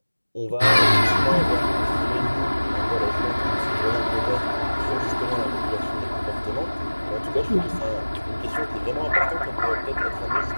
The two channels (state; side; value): inverted; both; correlation -1.00